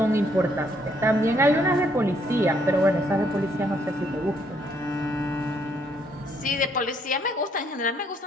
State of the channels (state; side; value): normal; both; correlation 0.69